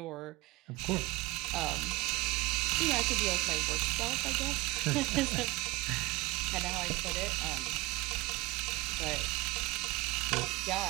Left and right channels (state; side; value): quieter; left; 21.9 dB